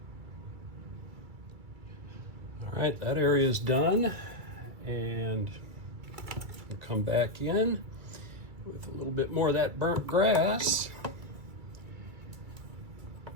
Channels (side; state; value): left; late; 2.3 ms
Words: All right, that area is done, and we'll come back in with a little bit more of that burnt grass,